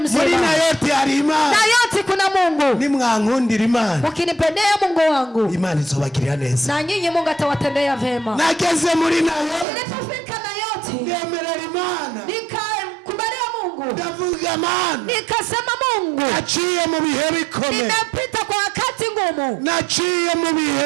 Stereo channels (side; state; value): left; drops out; at 9.7 s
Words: muri na yote hari Imana, na yote kuna Mungu. Nimwankundira Imana, ukinipendea Mungu wangu, Imana izobagirira neza, na nyinyi Mungu atawatendea vema. Nageze muri na yote, nilipofika na yote, ngemerera Imana, nikakubalia Mungu, ndavuga Imana, nikasema Mungu, naciye mu bihe bikomeye, nimepita kwa wakati ngumu, naciye mu